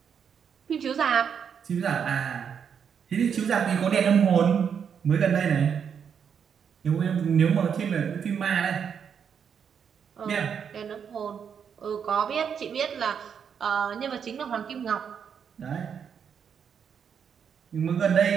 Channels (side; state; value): left; quieter; 7.4 dB